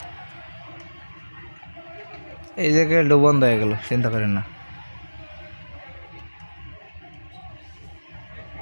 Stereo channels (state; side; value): inverted; both; correlation -1.00